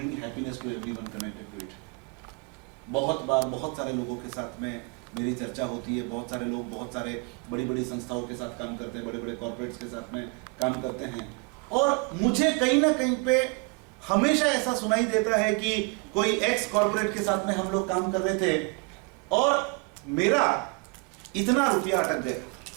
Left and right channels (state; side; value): quieter; left; 30.3 dB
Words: happiness to everyone connected to it. बहुत बार बहुत सारे लोगों के साथ में मेरी चर्चा होती है. बहुत सारे लोग बहुत सारे बड़ी संस्थाओं के साथ काम करते हैं, बड़े कॉर्पोरेट्स के साथ में काम करते हैं. और मुझे कहीं ना कहीं पे हमेशा ऐसा सुनाई देता है कि कोई एक्स कॉर्पोरेट के साथ में हम लोग काम कर रहे थे और मेरा इतना रुपया अटक गया